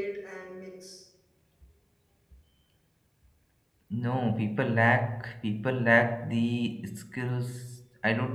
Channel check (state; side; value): identical; both; correlation 1.00